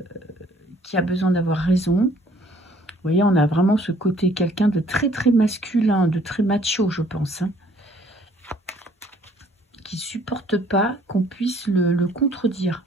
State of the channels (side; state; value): both; normal; correlation 0.59